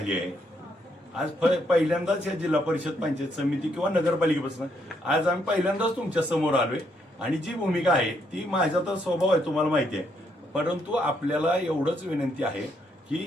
आहे? आज पहिल्यांदाच या जिल्हा परिषद पंचायत समिती किंवा नगरपालिकेपासून आज आम्ही पहिल्यांदाच तुमच्या समोर आलोय आणि जी भूमिका आहे ती माझा तर स्वभाव आहे तुम्हाला माहिती आहे, परंतु आपल्याला एवढंच विनंती आहे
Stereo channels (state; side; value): normal; both; correlation 0.74